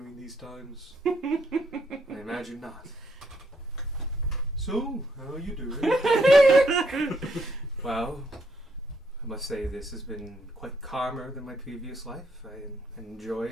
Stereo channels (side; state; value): both; normal; correlation 0.74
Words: these times. I imagine not. So, how are you doing? Well, I must say this has been quite calmer than my previous life. I enjoy